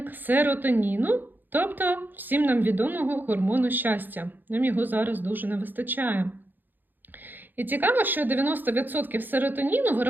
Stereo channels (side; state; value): left; late; 0.089 ms